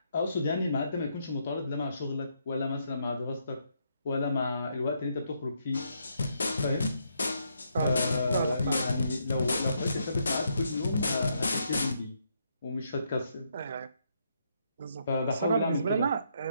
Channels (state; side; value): inverted; both; correlation -0.76